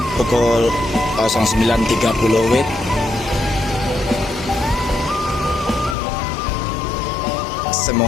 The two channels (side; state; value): right; drops out; at 6.0 s